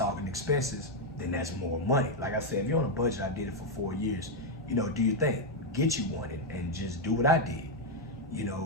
expenses, then that's more money. Like I said, if you're on a budget, I did it for 4 years, you know, do your thing. Get you one and just do what I did. You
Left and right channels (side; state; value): both; normal; correlation 0.02